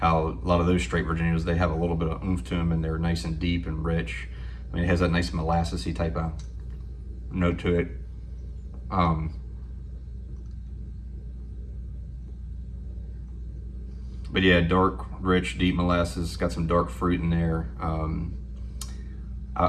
a lot of those straight Virginias, they have a little bit of oomph to them, and they're nice and deep and rich. I mean, it has that nice molassesy type of note to it. But yeah, dark, rich, deep molasses, got some dark fruit in there.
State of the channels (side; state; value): both; identical; correlation 1.00